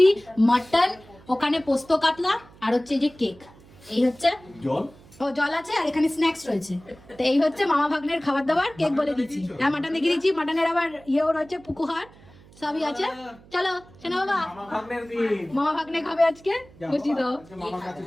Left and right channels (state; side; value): noise; right; hum, 24 dB below the sound